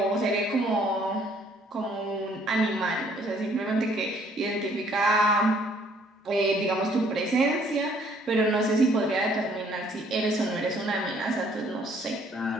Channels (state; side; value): normal; both; correlation 0.62